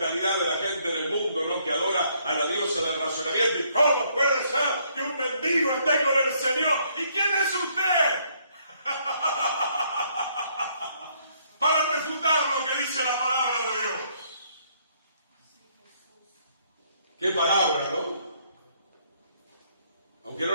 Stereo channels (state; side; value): inverted; both; correlation -0.68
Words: de la gente del mundo, ¿no? Que adora a la diosa del razonamiento. ¿Y cómo puede ser que un mendigo esté con el Señor? ¿Y quién es usted? Para refutar lo que dice la palabra de Dios. ¿Qué palabra, no? Aunque no